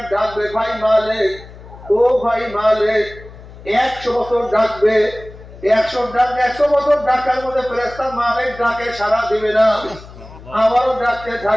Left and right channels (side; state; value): left; noise; hum, 18 dB below the sound